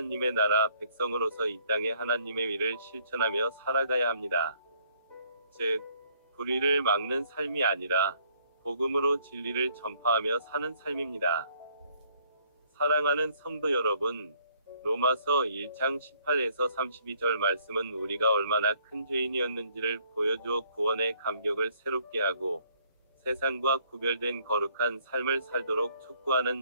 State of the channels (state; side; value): inverted; both; correlation -0.64